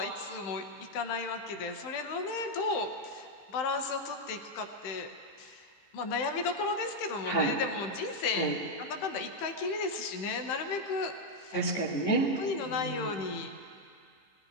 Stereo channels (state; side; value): late; right; 15 ms